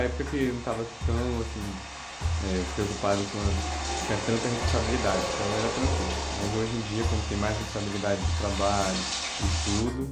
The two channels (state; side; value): identical; both; correlation 1.00